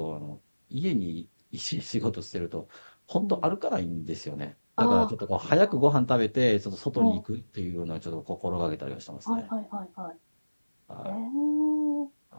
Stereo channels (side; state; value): both; inverted; correlation -1.00